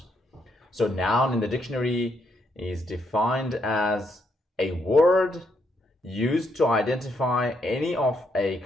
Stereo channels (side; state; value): both; normal; correlation 0.76